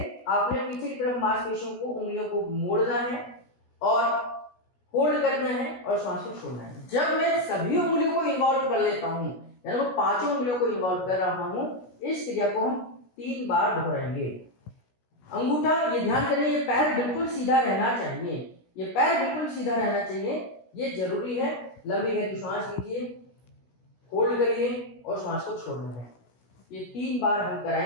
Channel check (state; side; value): late; right; 16 ms